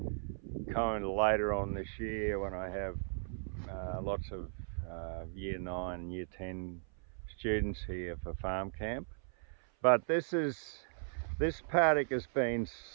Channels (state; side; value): silent; left; 53 dB below the other